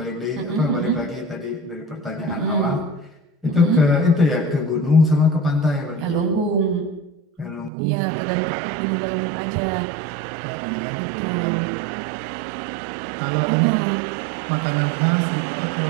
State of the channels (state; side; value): drops out; left; at 7.7 s